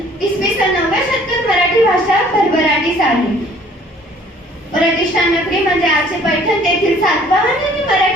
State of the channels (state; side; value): normal; both; correlation 0.56